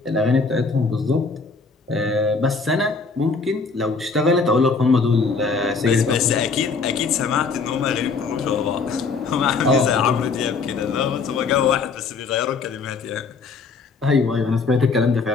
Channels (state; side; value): quieter; right; 4.5 dB